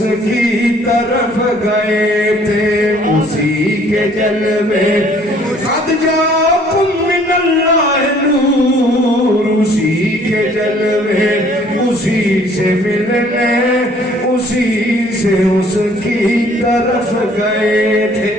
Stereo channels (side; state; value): both; normal; correlation 0.58